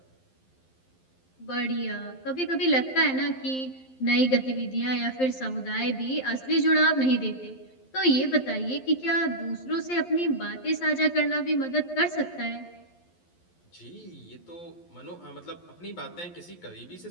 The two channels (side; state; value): right; late; 11 ms